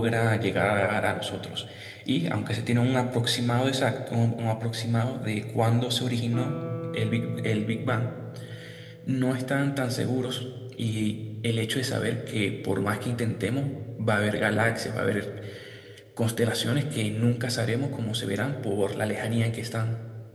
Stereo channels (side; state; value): both; identical; correlation 1.00